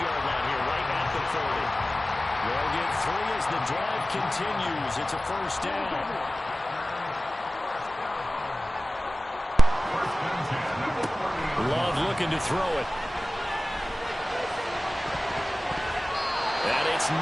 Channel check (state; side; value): normal; both; correlation 0.96